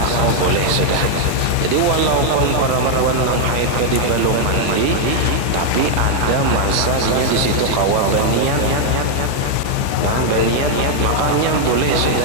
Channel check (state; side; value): different; both; correlation 0.00